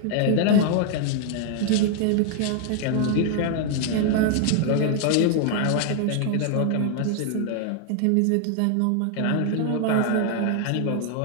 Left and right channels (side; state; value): both; different; correlation 0.00